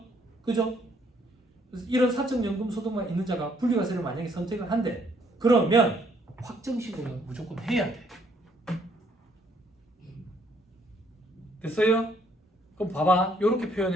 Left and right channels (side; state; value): both; normal; correlation 0.67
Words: 그래서 이런 사적연금 소득만 있는 자가 분리과세를 만약에 선택을 한대. 그러면 확정신고는 무조건 해야 돼. 됐어요? 그럼 봐봐. 이렇게